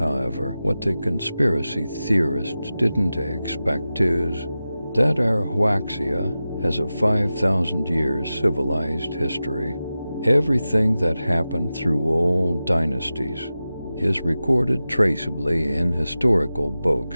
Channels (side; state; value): both; inverted; correlation -0.94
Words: what the conspiracy theorists didn't expect is that our Huaxia has a 5,000-year civilized history. Everything that happened through all dynasties is recorded traceably in historical